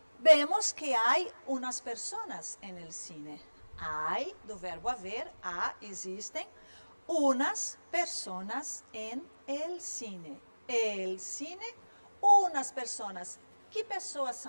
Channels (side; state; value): both; inverted; correlation -1.00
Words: vemos que há umas pessoas en el cine. Hay, do verbo haver, existem unas personas en el cine. El cine, unas personas. Que pessoas